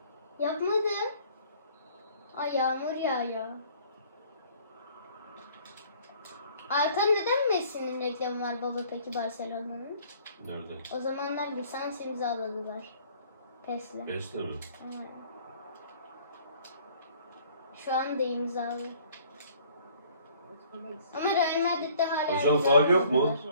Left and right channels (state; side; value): inverted; both; correlation -0.56